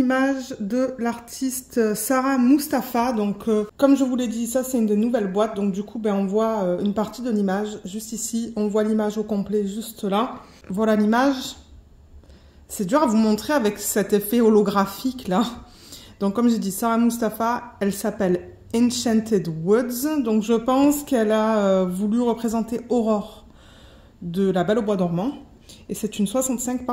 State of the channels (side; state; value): both; identical; correlation 1.00